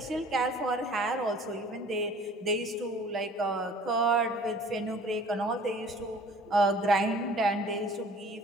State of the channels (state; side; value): normal; both; correlation 0.50